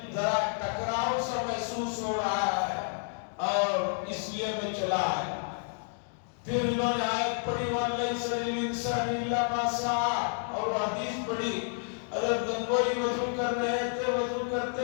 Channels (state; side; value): silent; right; 58 dB below the other